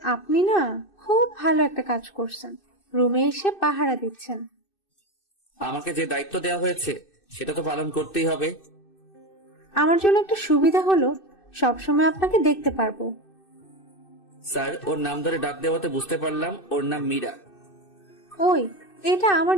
আপনি না খুব ভালো একটা কাজ করছেন, রুমে এসে পাহারা দিচ্ছেন। আমাকে যে দায়িত্ব দেওয়া হয়েছে সেটা তো পালন করতেই হবে। আমার জন্য একটা সুবিধা হলো সবসময় আপনাকে দেখতে পারবো। স্যার, ওর নাম ধরে ডাক দেওয়াতে বুঝতে পারলাম ওর নাম মীরা। ওই, এটা আমার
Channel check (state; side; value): late; right; 2.6 ms